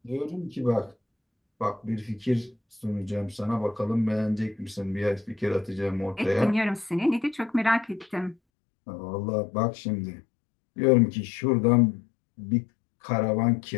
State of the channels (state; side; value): drops out; right; at 8.3 s